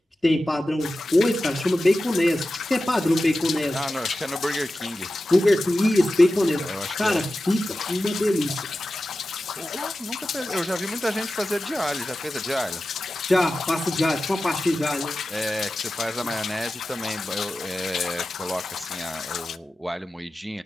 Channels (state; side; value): normal; both; correlation 0.94